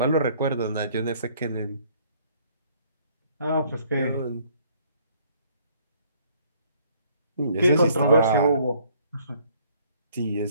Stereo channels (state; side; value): inverted; both; correlation -0.62